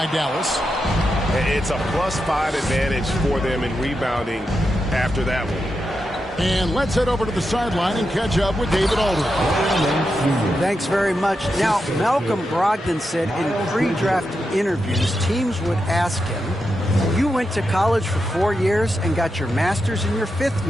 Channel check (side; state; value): both; normal; correlation 0.87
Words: Dallas. It's a +5 advantage for them in rebounding after that one. And let's head over to the sideline and catch up with David Aldridge. Thanks very much. Now, Malcolm Brogdon said in pre-draft interviews, teams would ask him, you went to college for 4 years and got your master's in your 5th